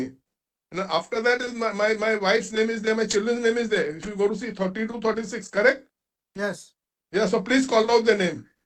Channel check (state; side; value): identical; both; correlation 1.00